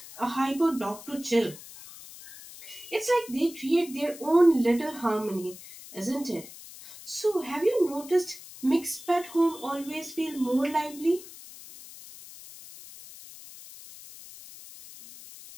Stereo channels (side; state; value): left; noise; hiss, 16 dB below the sound